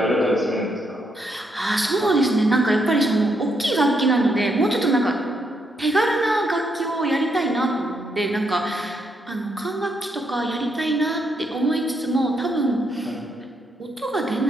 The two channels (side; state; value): both; normal; correlation 0.77